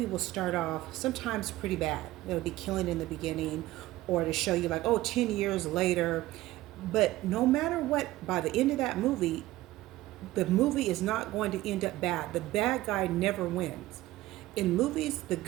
will start off sometimes pretty bad, it'll be killing in the beginning, or to show you like, 10 years later. But no matter what, by the end of that movie, the movie is not going to end up bad. The bad guy never wins. In movies, the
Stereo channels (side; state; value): left; quieter; 16.7 dB